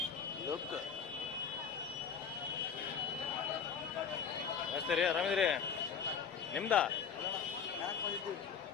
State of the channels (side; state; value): right; quieter; 6.8 dB